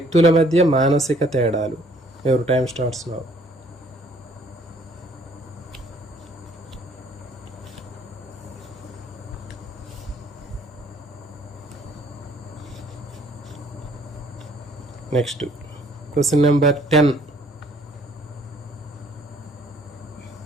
మధ్య మానసిక తేడాలు. Your time starts now. Next question number 10.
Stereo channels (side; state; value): both; normal; correlation 0.61